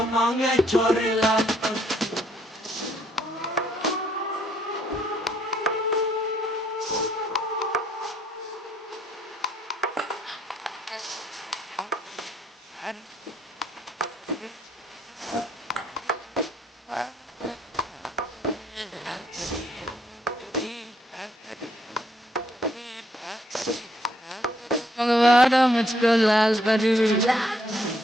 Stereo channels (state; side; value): normal; both; correlation 0.69